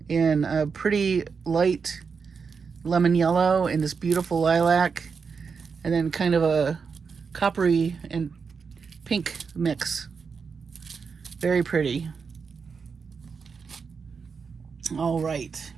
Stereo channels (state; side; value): quieter; left; 5.6 dB